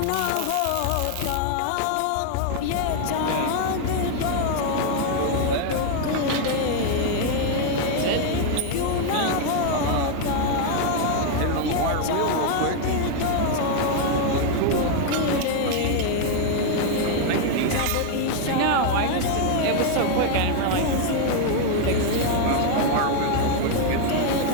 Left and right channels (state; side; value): different; both; correlation 0.00